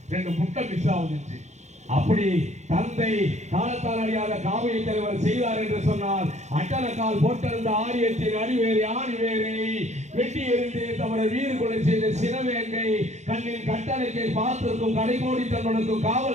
2 முட்டை மிஸ் ஆகுதுச்சு. அப்படி தந்தை காலத்தால் அறியாத காவிய தலைவர் செய்தார் என்று சொன்னால், அட்டனக்கால் போட்டிருந்த ஆரியத்தின் அடிவேரை ஆணிவேரை வெட்டி எறிந்தே தவிர வீறு கொலை செய்த சினவேங்கை கண்ணின் கட்டளைக்கை பார்த்திருக்கும் கடைகோடி தன்னுக்கும்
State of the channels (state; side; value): late; left; 0.33 ms